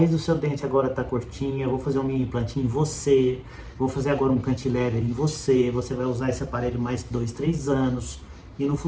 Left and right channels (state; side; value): identical; both; correlation 1.00